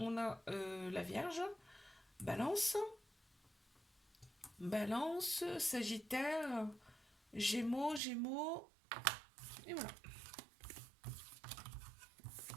a la vierge, balance, balance, sagittaire, gémeaux, gémeaux, et voilà.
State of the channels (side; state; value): left; drops out; at 8.0 s